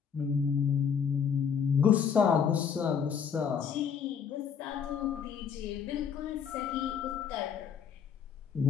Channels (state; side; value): quieter; right; 7.2 dB